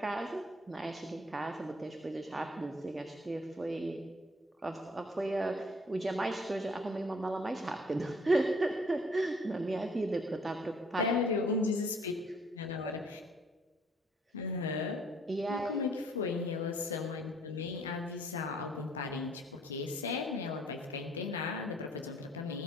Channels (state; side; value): normal; both; correlation 0.60